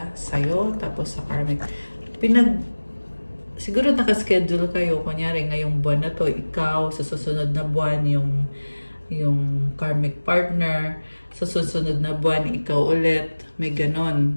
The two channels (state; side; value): inverted; both; correlation -1.00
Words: sa'yo, tapos sa karmic. Siguro nakaschedule kayo, kunyari ngayong buwan na to, ikaw, sa susunod na buwan, yung karmic partner, sa susunod na buwan, ikaw ulit, may